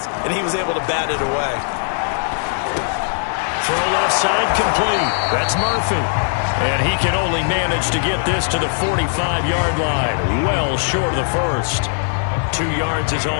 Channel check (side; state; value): right; silent; digital silence